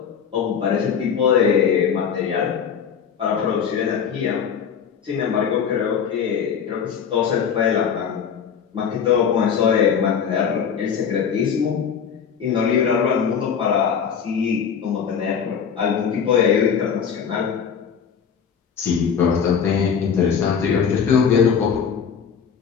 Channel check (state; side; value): quieter; right; 7.1 dB